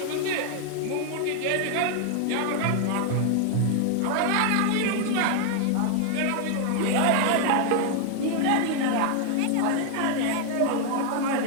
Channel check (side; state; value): both; different; correlation 0.00